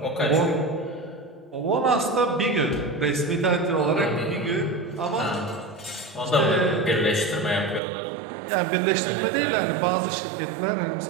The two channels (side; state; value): left; drops out; at 7.8 s